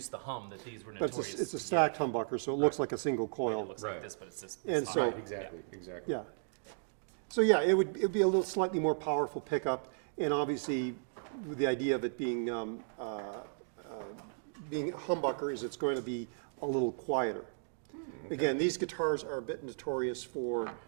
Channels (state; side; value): silent; left; digital silence